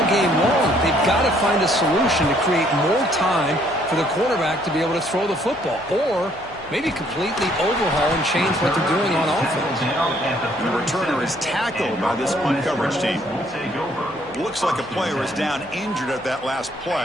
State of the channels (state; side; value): noise; left; hum, 23 dB below the sound